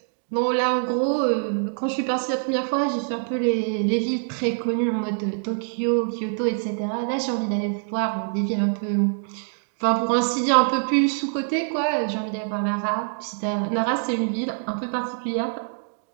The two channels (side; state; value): left; silent; digital silence